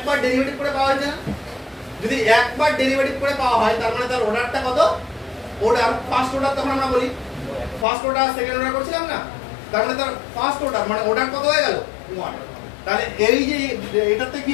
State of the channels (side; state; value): right; drops out; at 7.9 s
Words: ডেরিভেটিভ করে পাওয়া হয়েছে না, যদি একবার ডেরিভেটিভ করে পাওয়া হয় তার মানে তার অর্ডারটা কত, অর্ডার ফার্স্ট অর্ডার, তখন আমরা বলি ফার্স্ট অর্ডার সেকেন্ড অর্ডার করছিলাম না, তার মানে তার ফার্স্ট অর্ডার মানে অর্ডার কত হয়ে গেল 1। তাহলে এই যে এটাতে কি